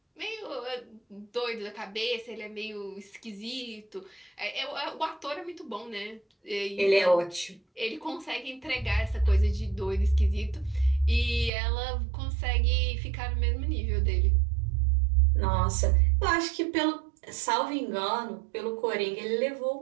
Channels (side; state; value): left; drops out; at 11.5 s